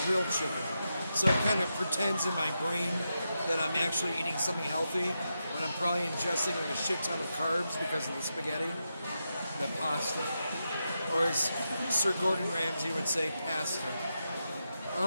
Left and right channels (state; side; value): inverted; both; correlation -0.87